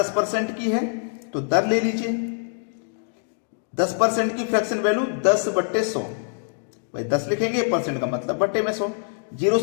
की है तो दर ले लीजिए। 10% की फ्रैक्शन वैल्यू 10/100, भाई 10 लिखेंगे, परसेंट का मतलब बट्टे में 100। 0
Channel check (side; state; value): right; silent; digital silence